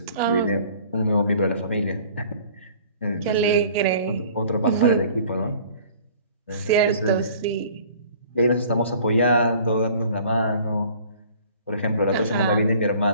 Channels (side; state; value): both; inverted; correlation -0.50